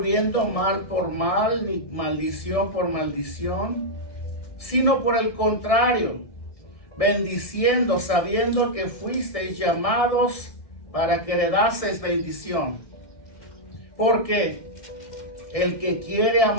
mal por mal, ni maldición por maldición, sino por el contrario, bendiciendo, sabiendo que fuisteis llamados para que heredaseis bendición. Porque el que quiere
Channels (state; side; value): late; right; 1.6 ms